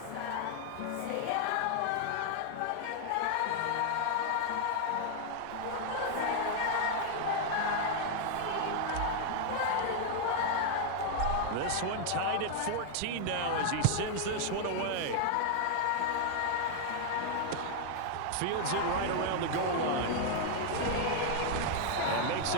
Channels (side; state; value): both; different; correlation 0.00